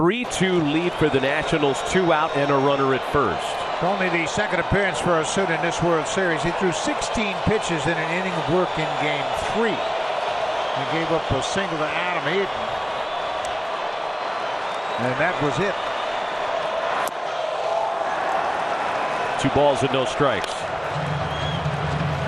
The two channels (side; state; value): both; identical; correlation 1.00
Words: lead for the Nationals, 2 out and a runner at first. Only the 2nd appearance for Osuna in this World Series. He threw 16 pitches in an inning of work in Game 3. He gave up a single to Adam Eaton, and that was it. 2 balls and no strikes.